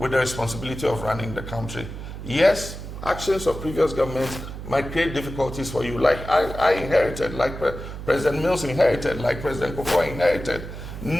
the responsibility of running the country. Yes, actions of previous governments might create difficulties for you, like I inherited, like President Mills inherited, like President Kufuor inherited.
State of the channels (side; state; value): right; noise; hum, 9 dB below the sound